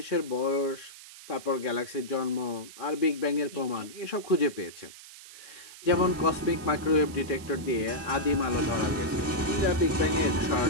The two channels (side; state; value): right; noise; hiss, 17 dB below the sound